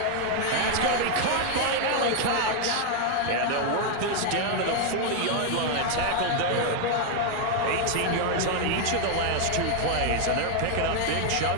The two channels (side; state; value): both; different; correlation 0.00